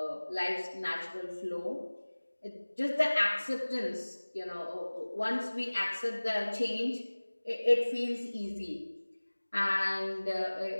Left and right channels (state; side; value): inverted; both; correlation -1.00